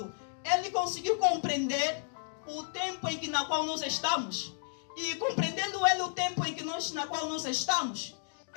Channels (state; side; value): silent; right; digital silence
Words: ele conseguiu compreender o tempo na qual nós estamos. E compreendendo ele o tempo na qual nós estamos,